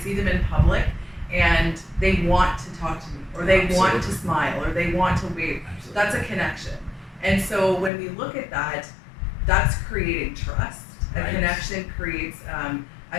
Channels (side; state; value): right; drops out; at 7.9 s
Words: see them in public and they want to talk to me or they want to smile or they want to wave. That's a connection. And so when we look at that, that's creating trust. A connection creates